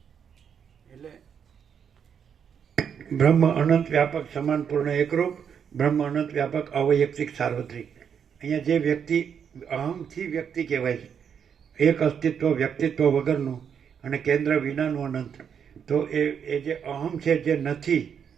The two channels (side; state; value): left; quieter; 7.6 dB